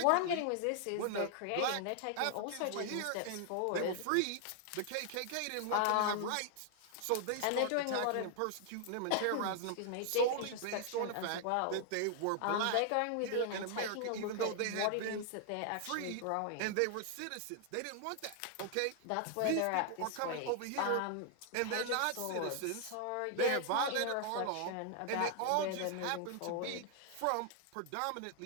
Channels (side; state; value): both; different; correlation 0.00